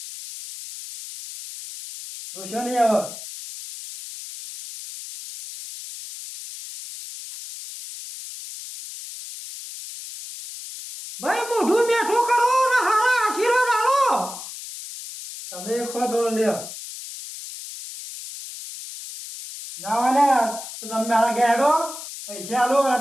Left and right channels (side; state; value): left; noise; hiss, 11 dB below the sound